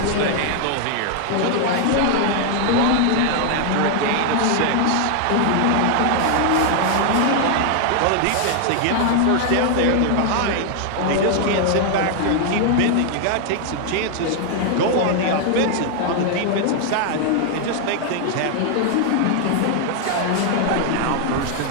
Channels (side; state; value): both; different; correlation 0.00